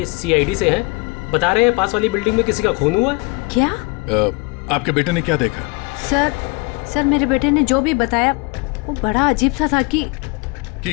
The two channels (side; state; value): right; quieter; 28.0 dB